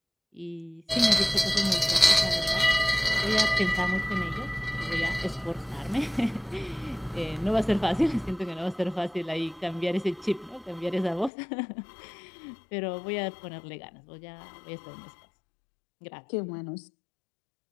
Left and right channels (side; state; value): right; drops out; at 11.3 s